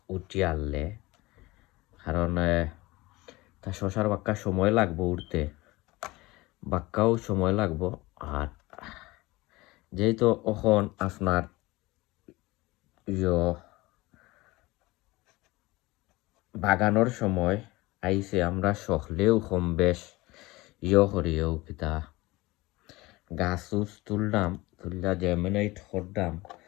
উঠি আনলে, কারণ তা শশার বাক্কা সময় লাগবো উঠতে, বাক্কাও সময় লাগবো। আর যেহেতু এখন আপনার বাগানোর সময় আইসে, আমরা সকলেও কম বেশ করিও কিতা গাছ তুললাম, তুললা জেমিনেট করলাম,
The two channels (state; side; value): quieter; right; 21.0 dB